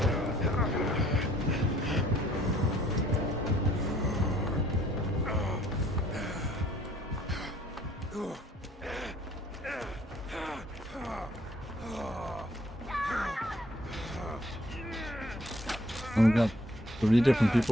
Oh, we got 3 different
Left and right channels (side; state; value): both; normal; correlation 0.60